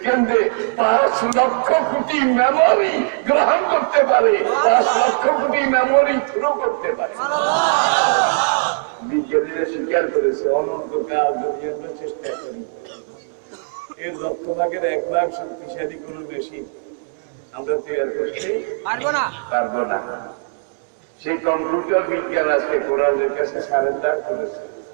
5 লক্ষ কোটি মেমোরি গ্রহণ করতে পারে, 5 লক্ষ কোটি মেমোরি থ্রো করতে পারে। বিজ্ঞানীরা স্বীকার করেছে অনন্তকাল যদি আমরা চেষ্টা করি, এর 1/1 শক্তিশালী কোন মেশিন আমরা তৈরি করতে পারবো না। সেই কম্পিউটার বিজ্ঞান আজকে কোরআনের কাছে সারেন্ডার করেছে,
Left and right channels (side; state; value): left; silent; digital silence